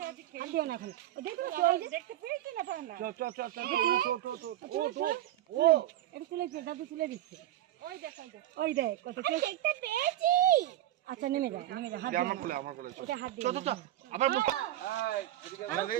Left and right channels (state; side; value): quieter; left; 13.5 dB